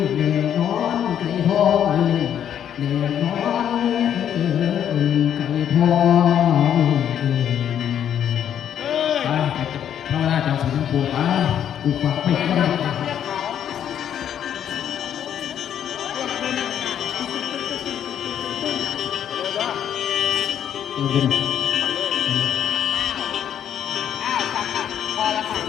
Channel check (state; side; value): quieter; right; 9.6 dB